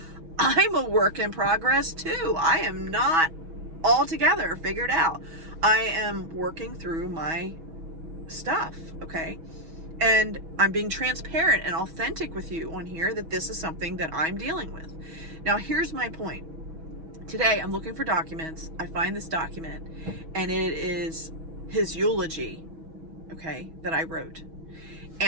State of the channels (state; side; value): late; left; 6.2 ms